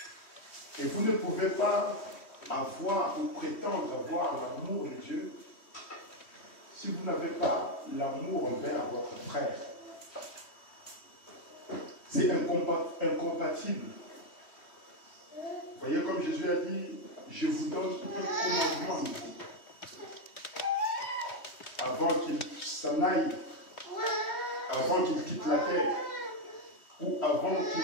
Et vous ne pouvez pas avoir ou prétendre avoir l'amour de Dieu si vous n'avez pas l'amour envers votre frère. C'est incompatible. voyez comme Jésus a dit, je vous donne un commandement nouveau. Avant qu'il s'en aille, avant qu'il quitte la terre, ou avant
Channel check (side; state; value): right; late; 3.1 ms